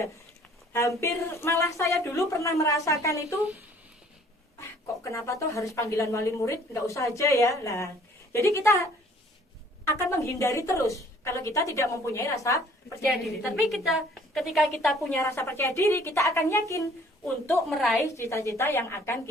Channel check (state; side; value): normal; both; correlation 0.56